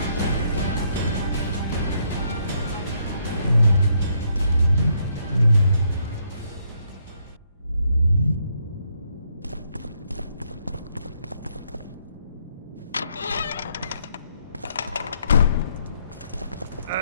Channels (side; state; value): both; inverted; correlation -0.73